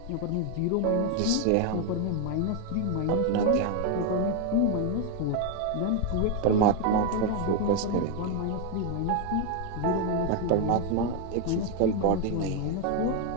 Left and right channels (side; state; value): both; different; correlation 0.01